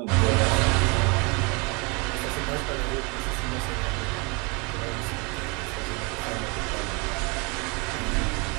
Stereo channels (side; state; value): left; quieter; 30.1 dB